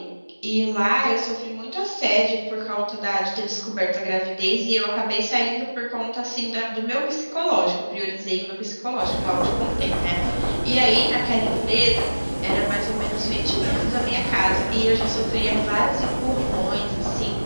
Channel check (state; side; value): inverted; both; correlation -1.00